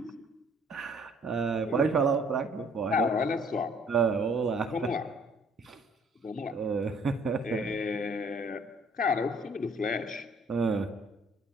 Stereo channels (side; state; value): both; normal; correlation 0.59